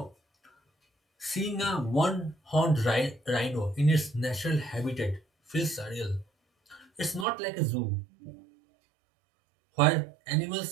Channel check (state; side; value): drops out; left; at 7.2 s